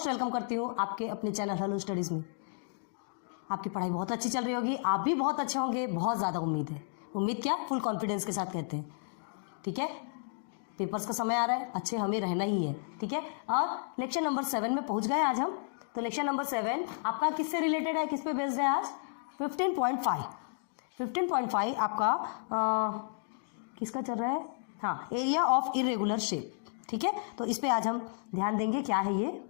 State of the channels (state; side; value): silent; right; digital silence